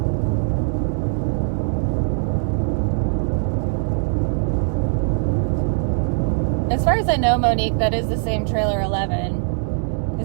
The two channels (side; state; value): left; silent; digital silence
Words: As far as I know, Monique, that is the same Trailer 11.